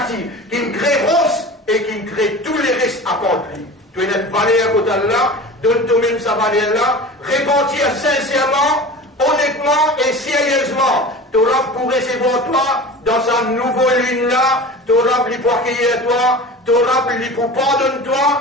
qui crée rose. Et qui crée tous les restes accomplis. Tu es une valeur côté d'Allah, donne toi-même sa valeur-là, répandir sincèrement, honnêtement et sérieusement. Tu auras pour recevoir toi dans sa nouvelle ligne-là, tu auras pour accueillir toi, tu auras pour pardonner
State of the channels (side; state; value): both; normal; correlation 0.35